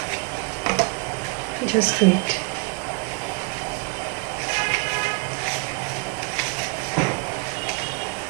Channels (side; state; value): left; quieter; 30.9 dB